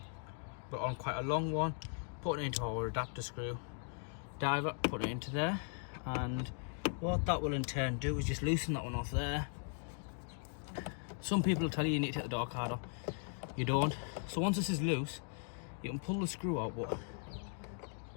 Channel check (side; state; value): right; silent; 52 dB below the other